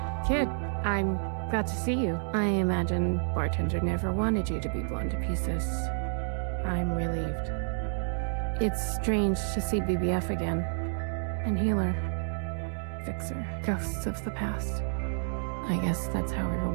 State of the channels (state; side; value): silent; left; digital silence